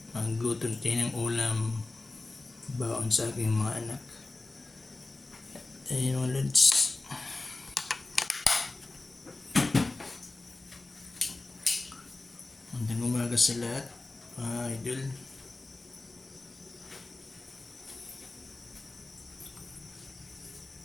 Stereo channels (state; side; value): quieter; right; 3.2 dB